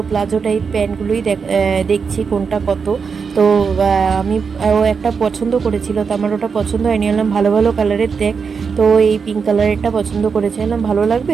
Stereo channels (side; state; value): left; quieter; 5.7 dB